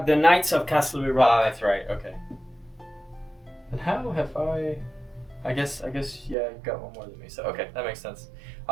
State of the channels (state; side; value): drops out; left; at 6.4 s